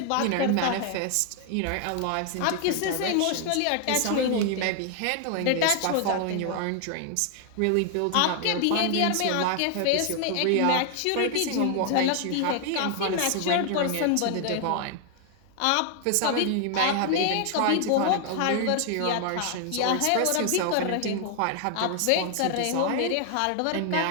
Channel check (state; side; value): different; both; correlation 0.00